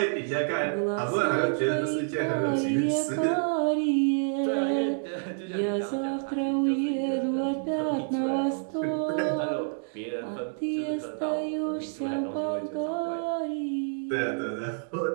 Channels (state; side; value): silent; left; digital silence